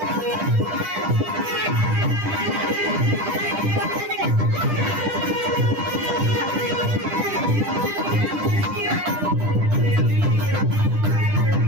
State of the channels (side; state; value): left; late; 10 ms